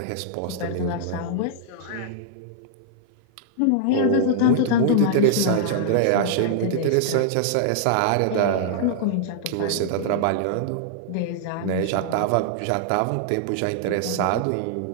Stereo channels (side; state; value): both; different; correlation -0.01